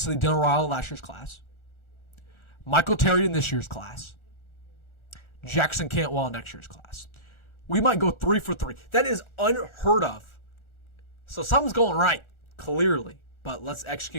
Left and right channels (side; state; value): right; late; 1.4 ms